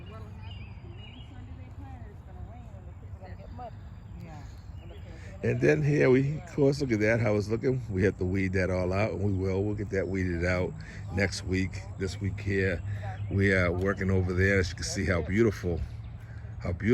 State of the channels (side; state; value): both; identical; correlation 1.00